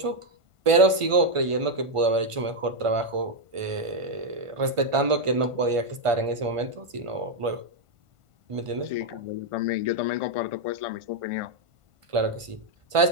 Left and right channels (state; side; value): late; left; 1.5 ms